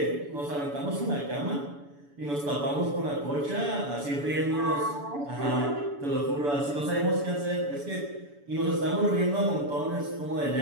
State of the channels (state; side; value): late; left; 7.0 ms